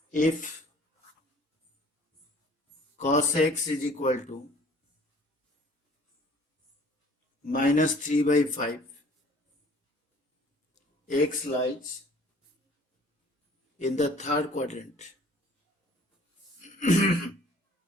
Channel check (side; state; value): both; normal; correlation 0.53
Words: If cos x is equal to minus 3 by 5, x lies in the third quadrant.